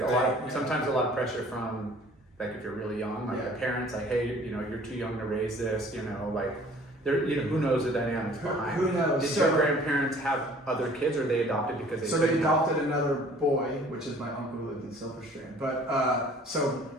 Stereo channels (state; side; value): normal; both; correlation 0.52